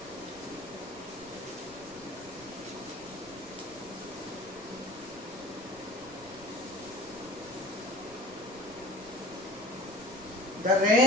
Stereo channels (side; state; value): right; noise; rumble, 22 dB below the sound